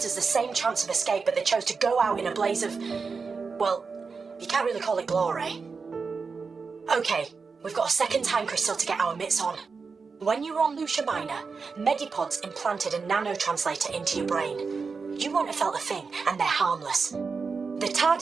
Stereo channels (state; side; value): quieter; left; 4.9 dB